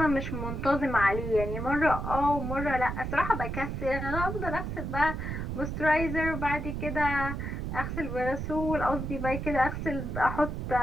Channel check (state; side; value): noise; right; rumble, 4 dB below the sound